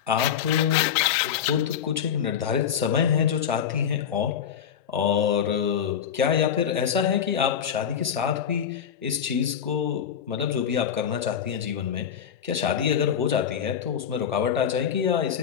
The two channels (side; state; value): right; quieter; 8.4 dB